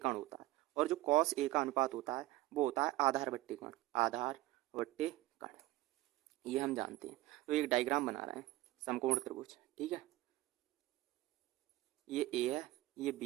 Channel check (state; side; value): quieter; left; 17.5 dB